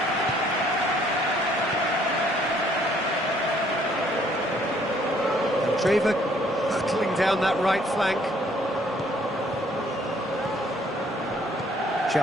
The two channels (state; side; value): normal; both; correlation 0.63